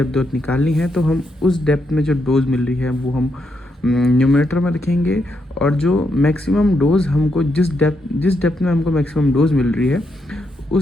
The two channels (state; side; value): normal; both; correlation 0.80